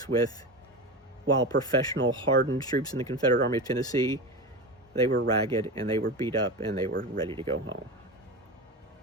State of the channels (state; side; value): normal; both; correlation 0.24